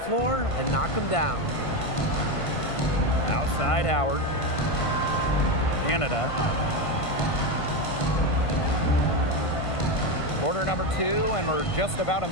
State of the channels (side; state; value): right; late; 1.5 ms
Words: and knock them down. Outside Howard. Canada. Quarter number 2, and we're just about a